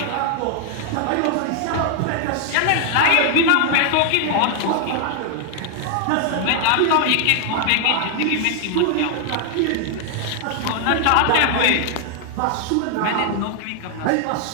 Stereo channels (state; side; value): different; both; correlation 0.00